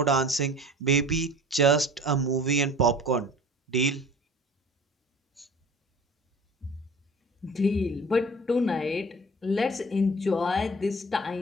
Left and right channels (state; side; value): normal; both; correlation 0.44